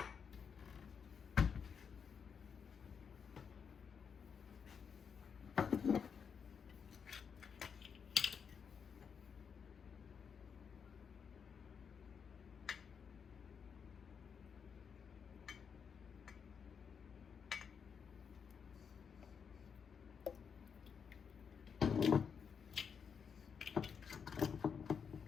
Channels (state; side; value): quieter; right; 6.6 dB